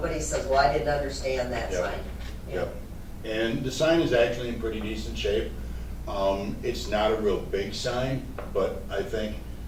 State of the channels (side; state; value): both; identical; correlation 1.00